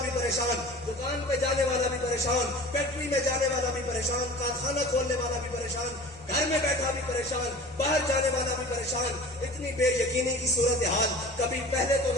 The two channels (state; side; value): normal; both; correlation 0.40